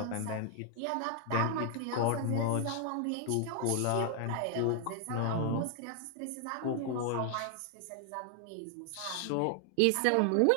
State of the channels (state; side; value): different; both; correlation 0.00